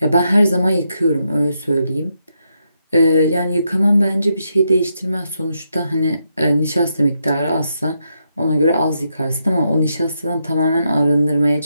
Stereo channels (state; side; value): inverted; both; correlation -0.81